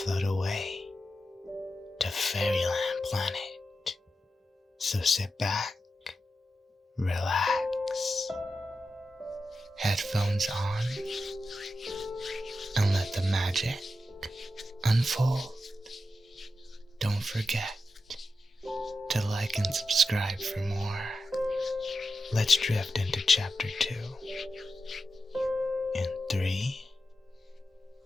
away to Fairyland Planet. So sit back, relax, headphones on, and let the magic unfold. Don't forget to like and subscribe for more. Let's drift into chapter 2 in 3,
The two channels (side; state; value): both; normal; correlation 0.89